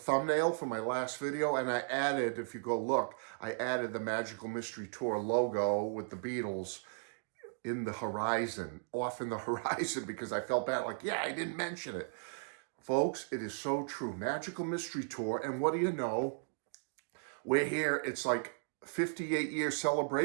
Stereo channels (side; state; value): left; silent; digital silence